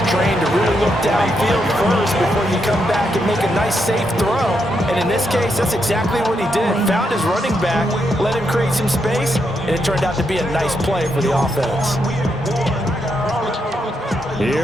trained to really look downfield first before you come back and make a nice, safe throw. And in this case, that's exactly what he did. Found his running back, let him create some space, and it turned out to be a nice play for the offense.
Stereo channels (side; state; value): both; normal; correlation 0.81